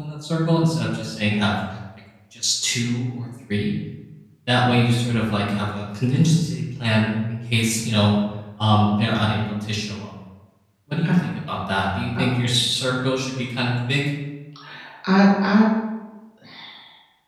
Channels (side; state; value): both; identical; correlation 1.00